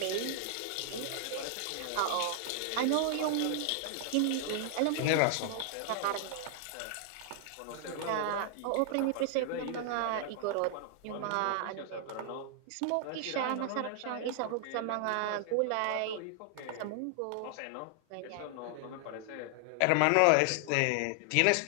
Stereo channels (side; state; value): both; different; correlation 0.00